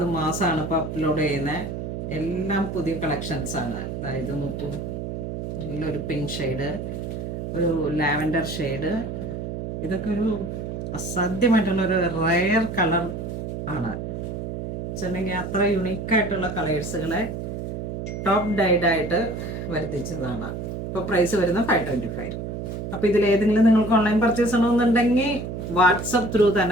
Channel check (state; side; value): noise; right; hum, 5 dB below the sound